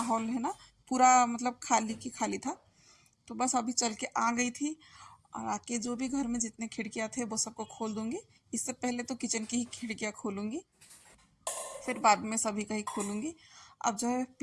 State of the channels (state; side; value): identical; both; correlation 1.00